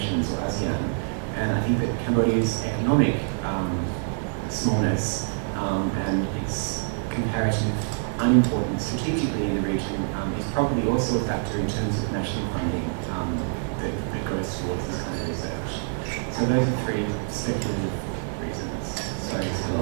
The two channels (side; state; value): left; silent; digital silence